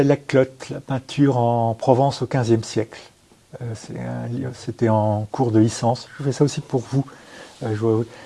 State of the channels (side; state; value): both; identical; correlation 1.00